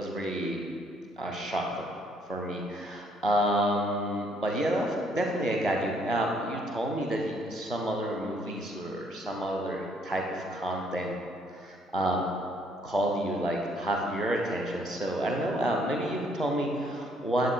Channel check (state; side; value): normal; both; correlation 0.66